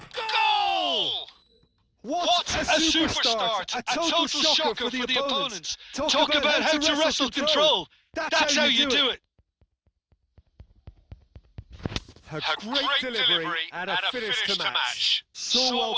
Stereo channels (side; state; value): both; identical; correlation 1.00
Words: Goal! What a superstart! A total shocker for the opponents. Talk about how to wrestle control. That's how you do it. A great delivery and a finish to match. So well